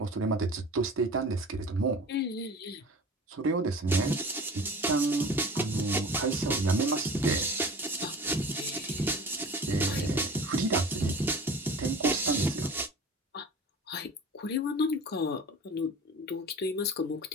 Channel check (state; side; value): normal; both; correlation 0.40